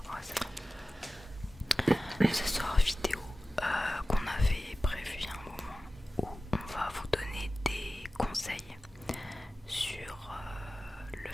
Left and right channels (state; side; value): normal; both; correlation 0.96